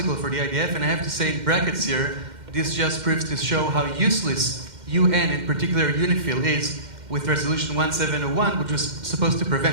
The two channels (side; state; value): left; late; 2.1 ms